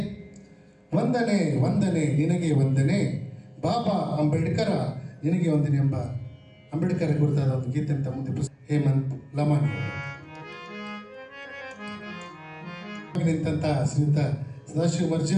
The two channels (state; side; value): identical; both; correlation 1.00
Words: ವಂದನೆ ವಂದನೆ ನಿನಗೆ ವಂದನೆ ಬಾಬಾ ಅಂಬೇಡ್ಕರ ನಿನಗೆ ವಂದನೆ ಎಂಬ ಅಂಬೇಡ್ಕರ್ ಕುರಿತಾದ ಒಂದು ಗೀತೆ ಅಂತ ಮುಂದೆ ಹೇಮಂತ್ ಲಮಾನಿ ನಿಂತ ಶ್ರೀಯುತ ಸದಾಶಿವ